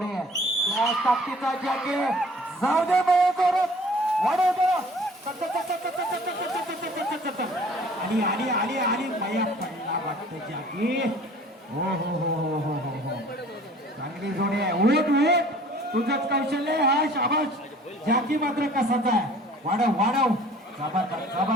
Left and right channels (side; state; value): both; normal; correlation 0.50